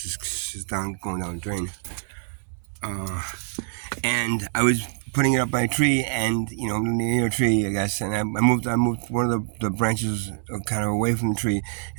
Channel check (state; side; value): silent; left; digital silence